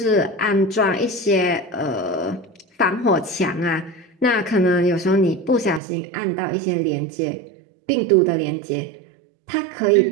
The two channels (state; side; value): drops out; left; at 5.8 s